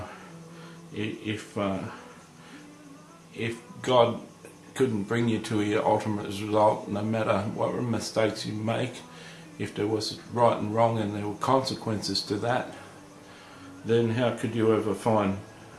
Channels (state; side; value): identical; both; correlation 1.00